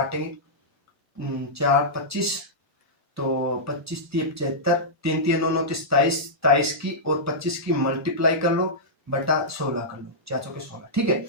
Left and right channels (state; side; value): normal; both; correlation -0.12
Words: 4 25, तो 25 × 75, 3 3 9 9 23, 23 की और 25 की मल्टीप्लाई कर लो बटा 16 कर लो, 4 चौके 16, ठीक है।